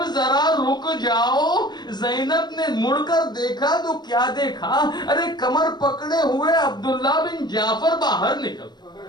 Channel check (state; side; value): late; right; 0.21 ms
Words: ذرا رک جاؤ. زینب نے مڑ کر دیکھا تو کیا دیکھا، ارے کمر پکڑے ہوئے عبداللہ بن جعفر باہر نکل.